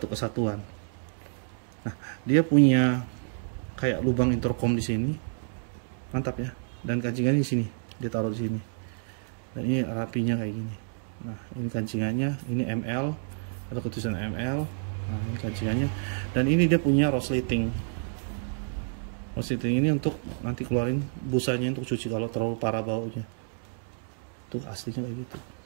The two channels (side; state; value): left; silent; digital silence